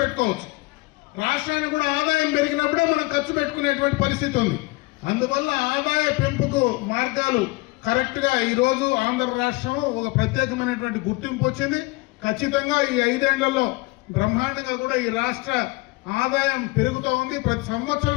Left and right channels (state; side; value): quieter; right; 23.3 dB